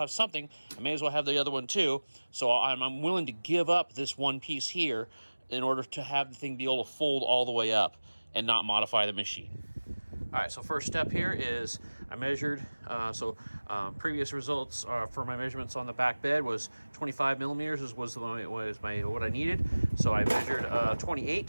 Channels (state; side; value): inverted; both; correlation -1.00